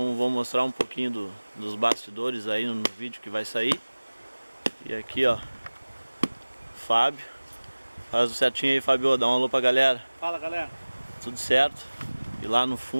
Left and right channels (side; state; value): both; inverted; correlation -1.00